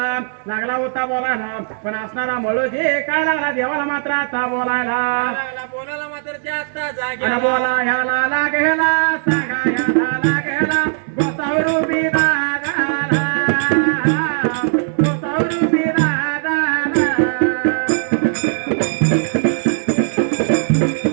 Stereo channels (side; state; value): left; silent; 67 dB below the other